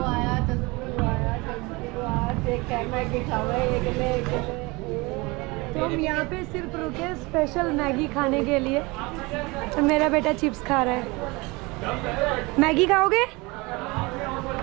तो हम यहाँ पे सिर्फ रुके स्पेशल मैगी खाने के लिए, तो मेरा बेटा चिप्स खा रहा है। मैगी खाओगे?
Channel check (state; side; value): quieter; left; 24.8 dB